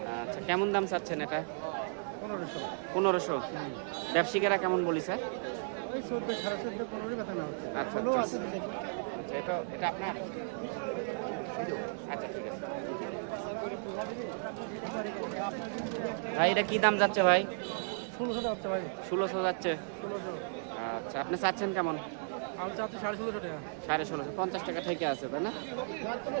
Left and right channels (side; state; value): left; silent; digital silence